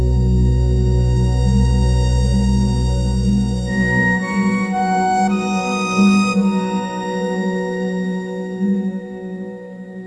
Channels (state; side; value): identical; both; correlation 1.00